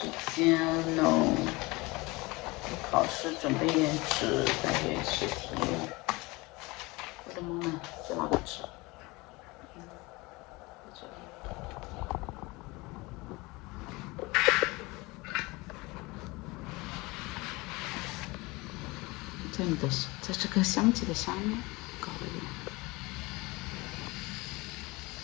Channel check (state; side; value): quieter; right; 23.5 dB